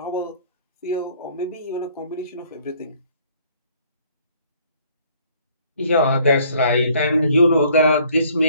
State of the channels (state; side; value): inverted; both; correlation -0.60